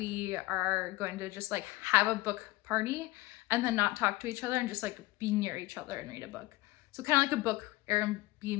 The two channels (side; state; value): right; quieter; 20.1 dB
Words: are going to just like have a book party and then not talk to each other and just like be near each other and read a book. So kind of like a book